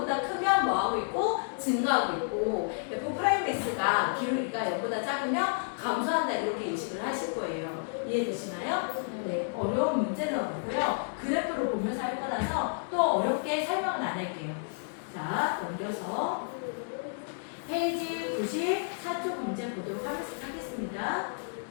크면 뭐하고 있고? 증가하고 있고 F'X가 기울기가 0보다 작으면 감소한다 이렇게 인식을 하실 거예요. 이해되시나요? 네, 어려운 문제는 없고요. 그래프로 보면서 할 거라서 또 어렵게 설명은 안 할게요. 자, 넘겨서 페이지 94쪽 문제 보도록 하겠습니다.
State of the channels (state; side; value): silent; right; digital silence